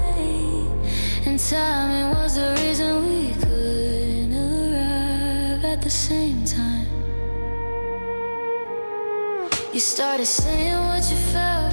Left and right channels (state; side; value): inverted; both; correlation -1.00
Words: late, and timing was the reason we couldn't arrive at the same time. You started saying what you